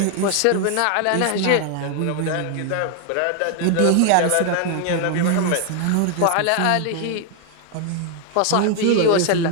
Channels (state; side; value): different; both; correlation 0.00